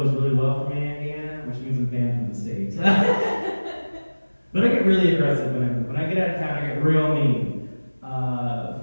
really well for me in Indiana, which means I'm banned from the States. But I get really aggressive when I get out of town. I get real mean.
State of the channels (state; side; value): inverted; both; correlation -1.00